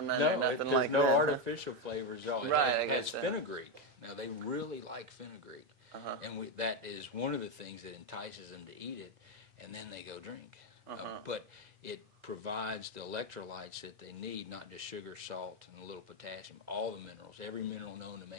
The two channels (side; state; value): left; late; 2.0 ms